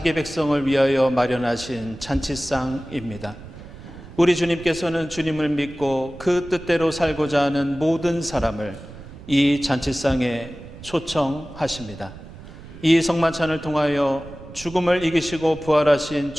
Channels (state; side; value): noise; right; rumble, 16 dB below the sound